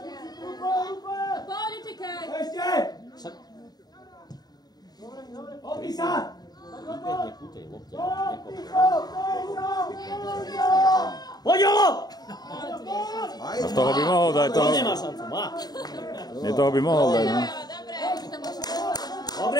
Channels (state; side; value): late; right; 0.19 ms